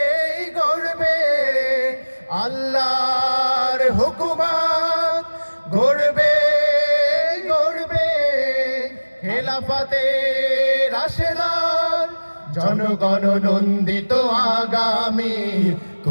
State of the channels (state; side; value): inverted; both; correlation -1.00